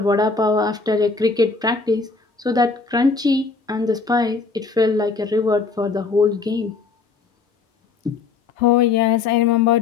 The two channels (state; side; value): quieter; right; 4.5 dB